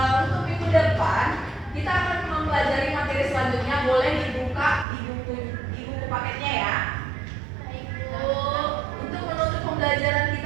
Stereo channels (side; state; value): left; drops out; at 4.9 s